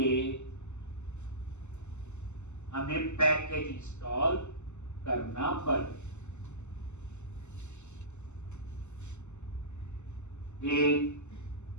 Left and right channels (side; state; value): right; late; 0.83 ms